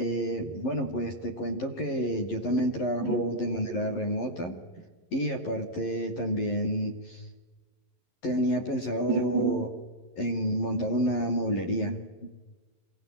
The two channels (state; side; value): late; right; 11 ms